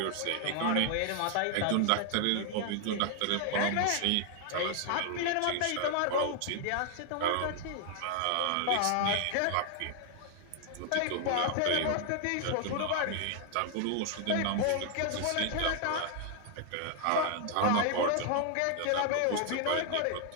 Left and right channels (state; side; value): different; both; correlation 0.00